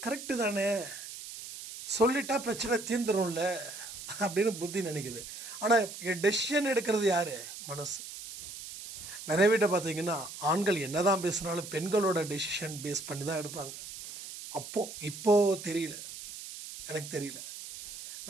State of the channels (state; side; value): noise; right; hiss, 11 dB below the sound